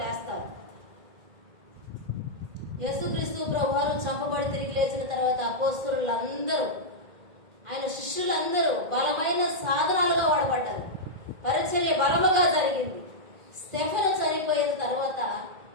లేస్తారు. యేసుక్రీస్తు ప్రభువారు చంపబడి తిరిగి లేచిన తర్వాత అపోస్తలులందరూ, ఆయన శిష్యులందరూ బలమైన సాధనాలుగా వాడబడ్డారు. పరిచర్య బలముగా జరిగింది. స్టెఫెను చనిపోయిన తర్వాత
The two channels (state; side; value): late; left; 2.5 ms